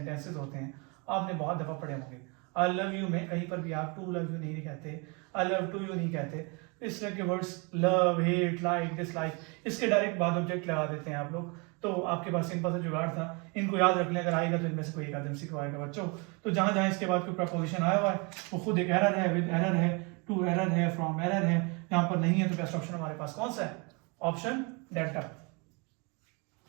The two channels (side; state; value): left; quieter; 31.1 dB